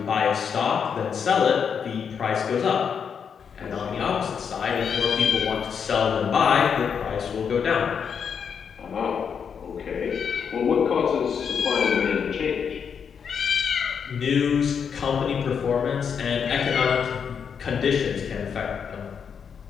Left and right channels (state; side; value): quieter; right; 6.9 dB